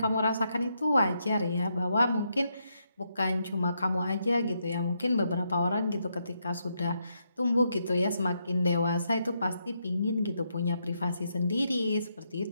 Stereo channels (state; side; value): inverted; both; correlation -0.80